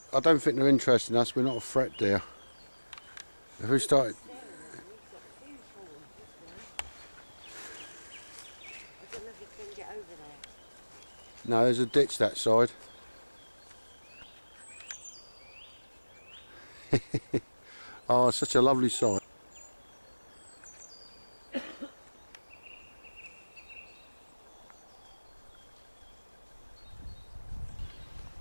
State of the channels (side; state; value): both; inverted; correlation -1.00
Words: I don't think they're interested in us. We're not a threat, dear. If we started. I don't know if you can get over there. No, there's a ditch that side. Oh, it's such a lovely sight.